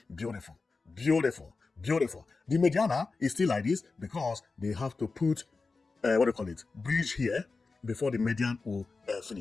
beautiful, beautiful, beautiful. The Mediana is still like this because they have to put what do you call it, bridge here before the median will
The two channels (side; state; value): right; quieter; 4.1 dB